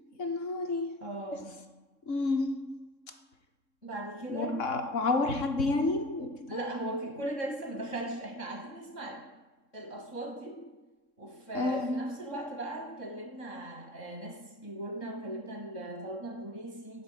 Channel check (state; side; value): late; right; 3.7 ms